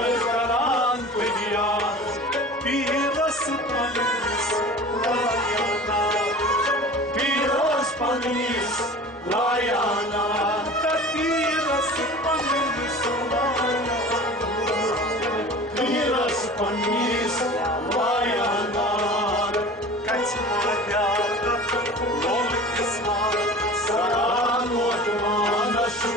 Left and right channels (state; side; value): normal; both; correlation 0.39